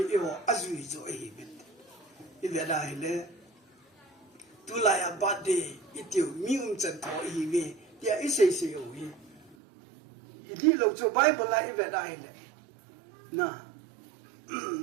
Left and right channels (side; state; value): left; drops out; at 9.6 s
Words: i ho azui zo hi ben I ve dai le tu lai a birthday itiu mi chen tho hi ve tia isei se o hi idi lo chu bible la ive dai le na